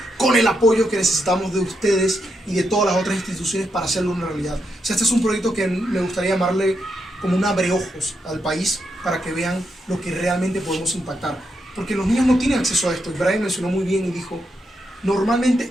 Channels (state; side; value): normal; both; correlation 0.82